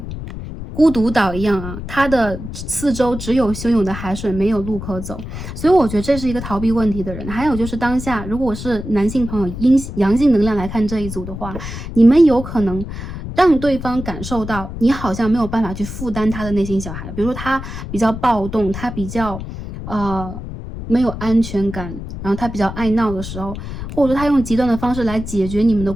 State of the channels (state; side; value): noise; left; rumble, 9 dB below the sound